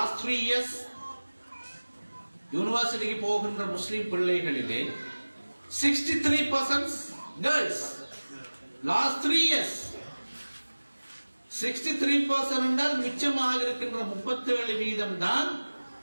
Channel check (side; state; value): both; inverted; correlation -1.00